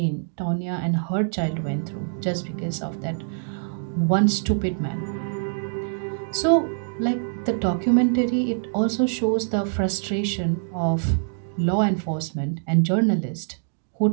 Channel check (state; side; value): silent; left; digital silence